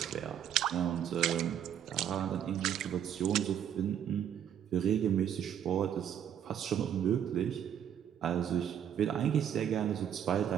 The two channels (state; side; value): quieter; left; 9.5 dB